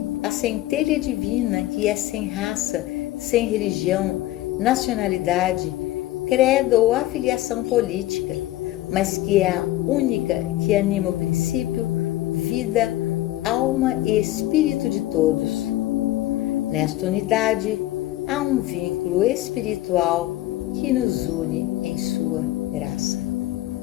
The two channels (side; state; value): right; quieter; 15.9 dB